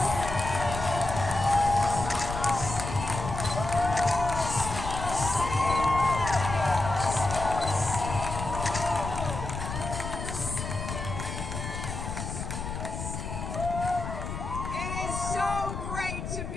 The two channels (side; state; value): left; noise; rumble, 6 dB below the sound